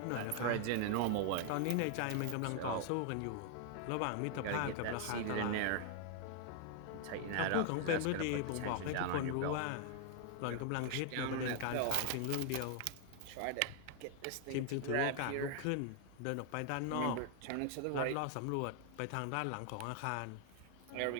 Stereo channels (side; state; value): both; different; correlation 0.00